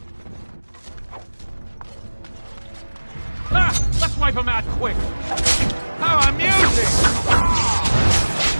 Let's wipe him out quick. How amusing!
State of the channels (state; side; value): inverted; both; correlation -1.00